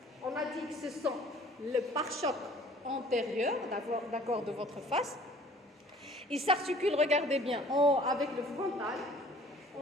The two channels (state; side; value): normal; both; correlation 0.51